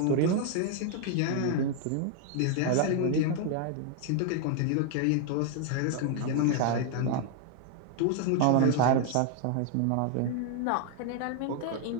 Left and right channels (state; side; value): different; both; correlation 0.00